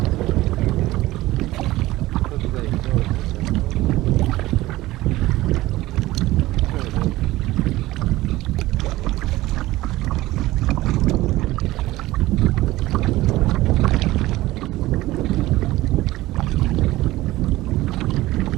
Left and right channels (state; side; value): quieter; left; 17.5 dB